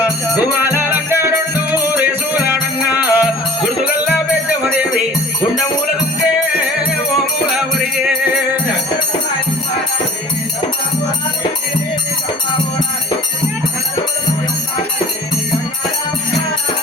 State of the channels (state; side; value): normal; both; correlation 0.46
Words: గుమాల రంగారుండు రేసులాడంగా గుర్తుగల్లా పెద్దమదేవి గుండమూల దుంకే ఓ మూల ఉరిగే